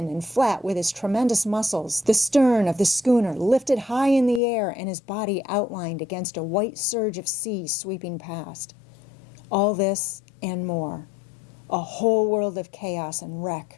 and flat with his tremendous muscles, the stern of the schooner lifted high in the air and his body outlined against a white surge of sea sweeping past. All this and more. A whole world of chaos and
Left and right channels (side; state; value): right; drops out; at 4.4 s